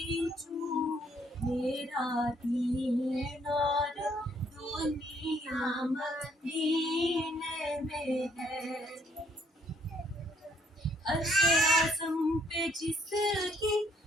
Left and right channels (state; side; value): normal; both; correlation 0.68